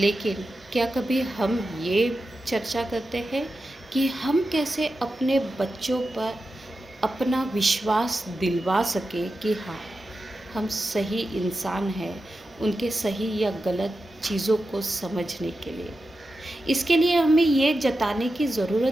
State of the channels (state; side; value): normal; both; correlation 0.91